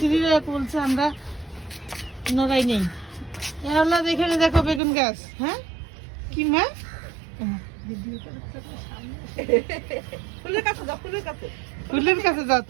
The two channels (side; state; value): left; drops out; at 4.8 s